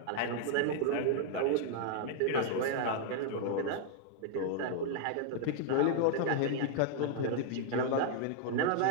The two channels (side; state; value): both; different; correlation 0.00